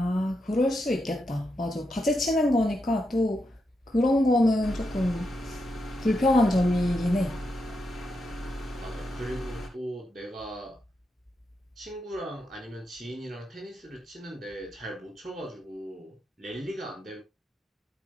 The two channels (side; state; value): both; normal; correlation 0.84